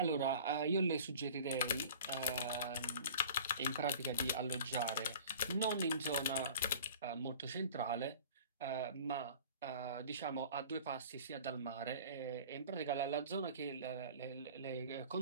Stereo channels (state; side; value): inverted; both; correlation -0.43